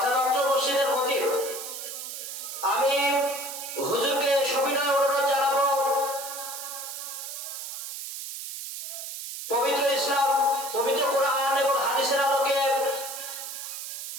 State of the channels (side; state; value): right; noise; hiss, 8 dB below the sound